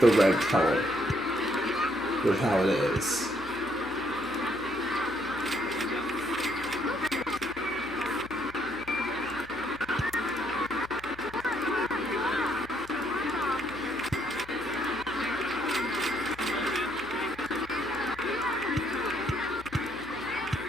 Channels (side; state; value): left; noise; hum, 19 dB below the sound